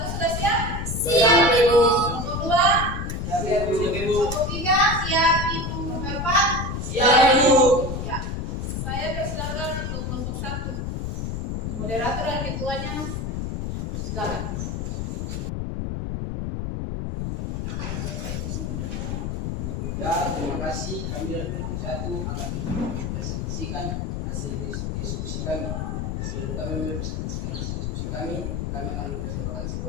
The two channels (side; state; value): left; noise; rumble, 3 dB below the sound